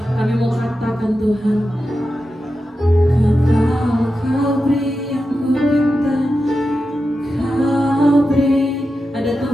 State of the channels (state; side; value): normal; both; correlation 0.91